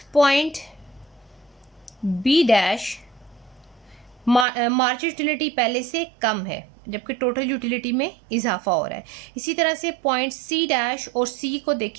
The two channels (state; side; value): drops out; left; at 4.5 s